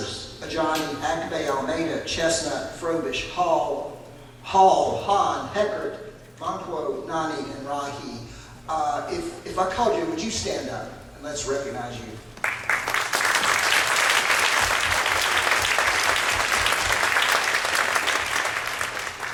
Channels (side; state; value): both; identical; correlation 1.00